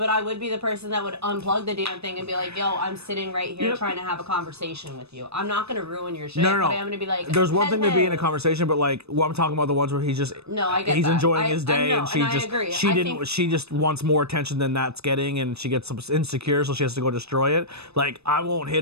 I would be the person that would unplug the damn thing and be like, "Yo, I'm sitting right here Yep. trying to have a conversation with you. I'm not gonna ruin your shit, No, no, no. but I'm gonna be like." There's one thing to be in a "Hey." conversation, but like, what I'm talking about the ones where he's just No, I get he's that. enjoying I his day, know, and she and I just agree. she I didn't think- she just wants more attention than that's getting, and she gets some insecure, so she has to go destroy it. Like I won't hit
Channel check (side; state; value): left; late; 0.79 ms